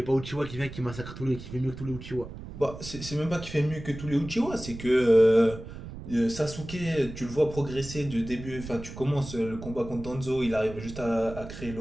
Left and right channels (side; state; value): right; noise; rumble, 12 dB below the sound